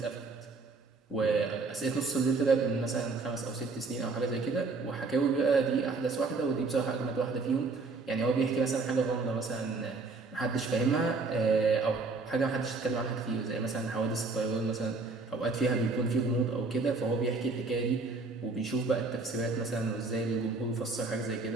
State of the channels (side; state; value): left; quieter; 3.9 dB